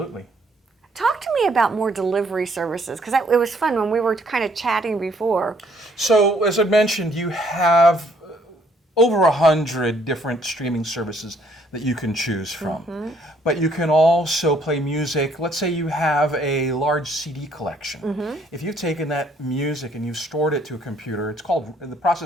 Talk to me about more delivery services, because it was fun when we were kind of chatting before. So, as I mentioned, you have over 100 different streaming services that you can choose from. But you can also play music. Let's say you have a large CD collection. If you've taken that music and you've stored it to a computer, the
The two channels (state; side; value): normal; both; correlation 0.65